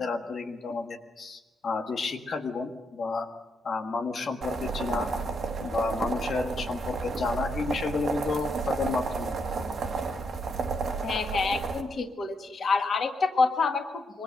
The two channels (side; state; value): both; normal; correlation 0.78